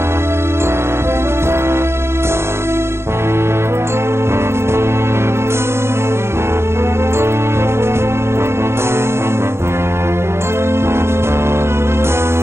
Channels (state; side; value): late; left; 0.12 ms